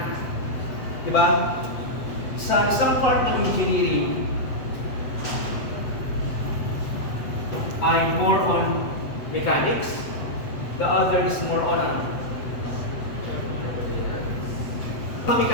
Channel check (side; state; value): right; late; 8.0 ms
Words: Diba? Sa isang part ng engineering ay more on mechanics, the other is more on